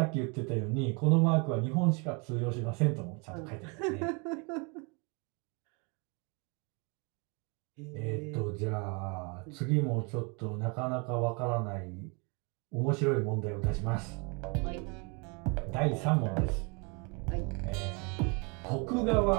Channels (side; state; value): left; quieter; 32.2 dB